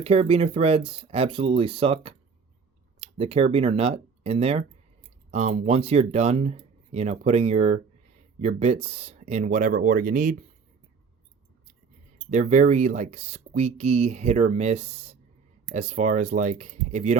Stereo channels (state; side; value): quieter; left; 5.4 dB